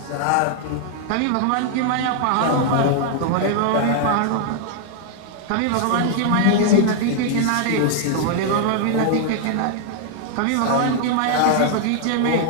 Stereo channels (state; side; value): different; both; correlation 0.00